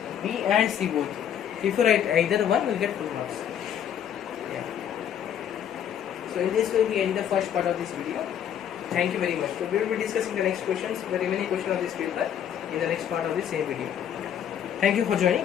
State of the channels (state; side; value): quieter; right; 9.3 dB